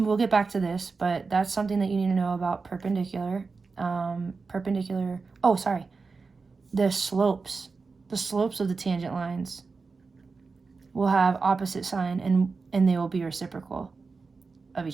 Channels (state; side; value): quieter; left; 4.4 dB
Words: get back to this, but that's something that you need to know about perpendicular. The slopes of the tangent lines will have opposite sign and they will be reciprocal of